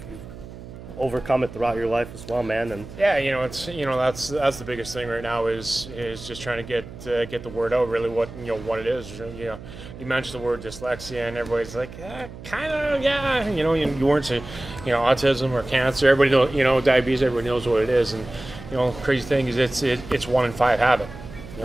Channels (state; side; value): noise; right; hum, 14 dB below the sound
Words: overcome it throughout your life as well, man. And yeah, it's that's the biggest thing right now is just trying to get the word out. Really, what it is. You mentioned the word dyslexia, and everybody's like, kind of, yeah. You weren't saying, autism or cancer. Everybody knows, diabetes. Everybody knows what it is, and crazy thing is it's 1 in 5 have it.